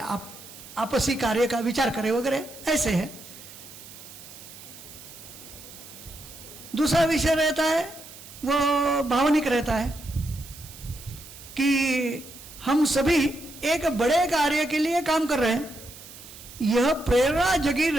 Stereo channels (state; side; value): noise; right; hiss, 17 dB below the sound